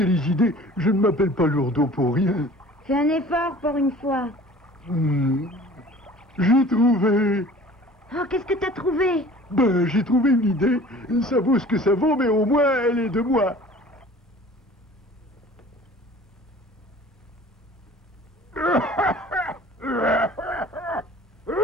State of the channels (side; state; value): both; normal; correlation 0.46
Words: les idées, je ne m'appelle pas Lourdeau pour rien. Fais un effort pour une fois. J'ai trouvé. Oh, qu'est-ce que t'as trouvé? Ben, j'ai trouvé une idée. Ça vaut ce que ça vaut, mais au moins, elle est de moi.